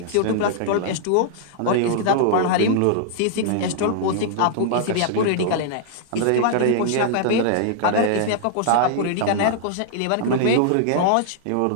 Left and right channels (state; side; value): different; both; correlation -0.01